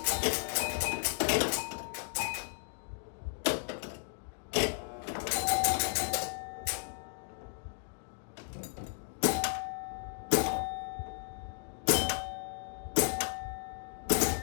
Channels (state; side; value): silent; right; digital silence